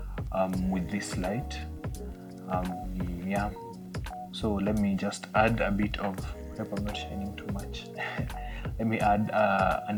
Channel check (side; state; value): both; identical; correlation 1.00